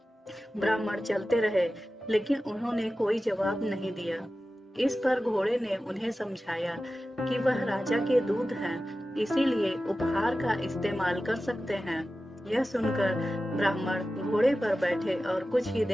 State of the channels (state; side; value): normal; both; correlation 0.94